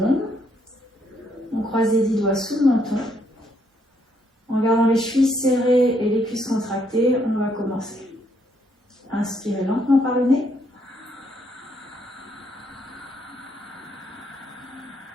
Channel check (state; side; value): normal; both; correlation 0.72